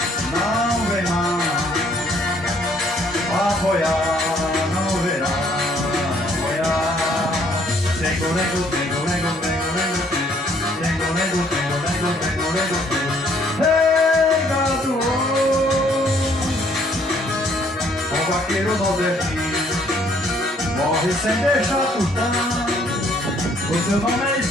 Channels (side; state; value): both; normal; correlation 0.64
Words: Não vem mais apoiar, não verá apoiar. Tengo, lego, tengo, lego, tengo, lego, tengo, lego, tengo, lego, tengo, lego, tengo. Ei, gado! O vaqueiro nordestino morre sem deixar tostão. O seu nome é